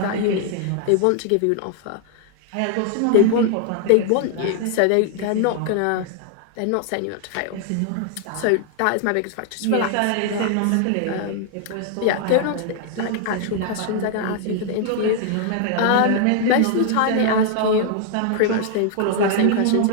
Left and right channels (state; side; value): different; both; correlation 0.00